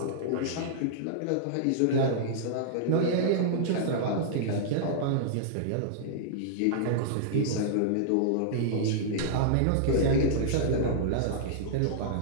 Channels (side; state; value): both; different; correlation -0.02